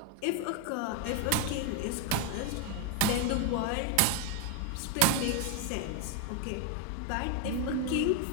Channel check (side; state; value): both; different; correlation 0.01